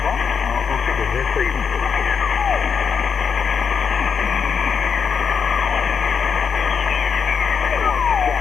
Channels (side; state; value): right; quieter; 6.4 dB